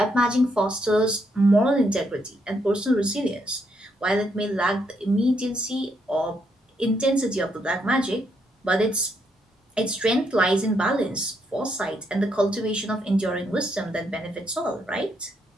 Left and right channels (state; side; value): normal; both; correlation 0.76